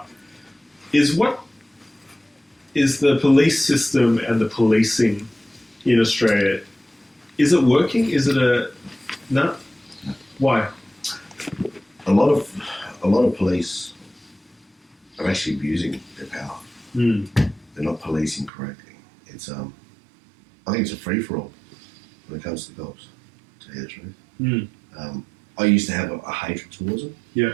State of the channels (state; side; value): drops out; left; at 18.5 s